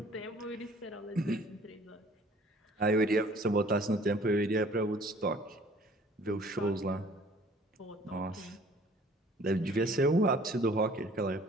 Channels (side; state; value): both; normal; correlation 0.53